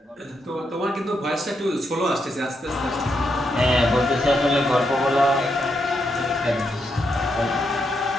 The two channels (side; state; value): both; normal; correlation 0.81